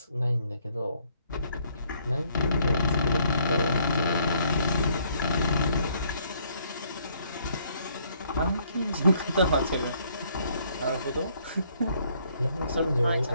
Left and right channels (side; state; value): both; inverted; correlation -0.66